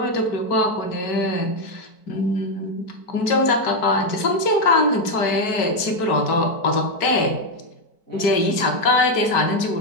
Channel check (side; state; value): right; late; 4.6 ms